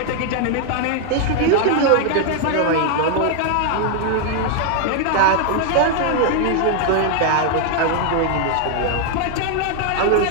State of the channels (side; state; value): both; different; correlation 0.00